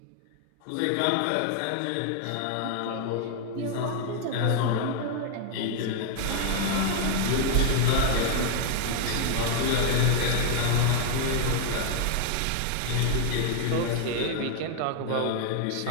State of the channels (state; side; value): different; both; correlation 0.00